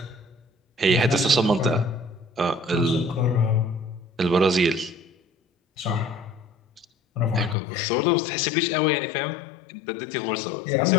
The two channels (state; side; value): drops out; right; at 7.6 s